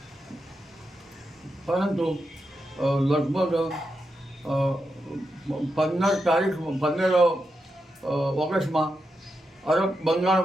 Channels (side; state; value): both; normal; correlation 0.86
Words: પરંતુ લગભગ 15 ઓગસ્ટમાં અરબ બંગાળ